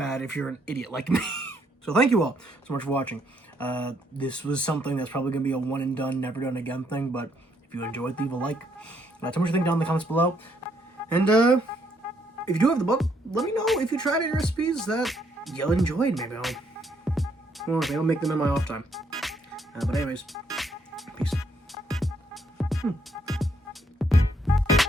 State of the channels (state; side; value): normal; both; correlation 0.71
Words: if you're an idiot like me. So thank you all so much for watching. This was something that's probably going to be a one and done, never done again thing, but if you enjoyed, leave a like. Tell me what you think down in the comments below. And if you do have the book, let me know if you tried any recipes that you enjoyed. Maybe I'll make them in my off time. But anyways, peace.